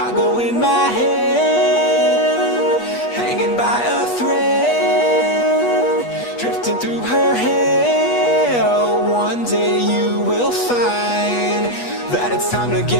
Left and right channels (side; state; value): right; late; 8.3 ms